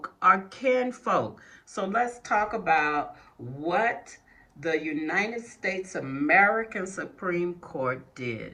are kin folk. So let's talk about what the United States American Supreme Court did.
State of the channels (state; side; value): identical; both; correlation 1.00